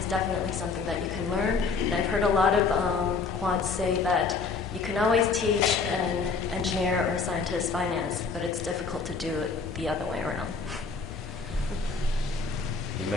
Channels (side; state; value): right; quieter; 4.8 dB